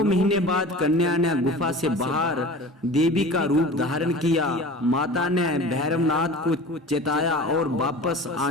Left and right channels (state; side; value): normal; both; correlation 0.37